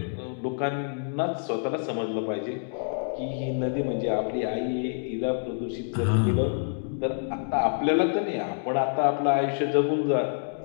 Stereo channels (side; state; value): right; silent; digital silence